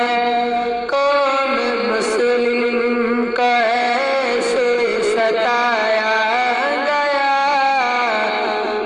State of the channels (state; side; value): identical; both; correlation 1.00